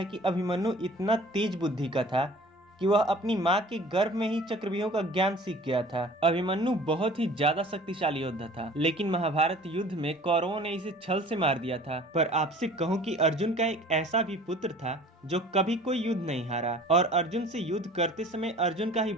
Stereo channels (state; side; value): normal; both; correlation 0.47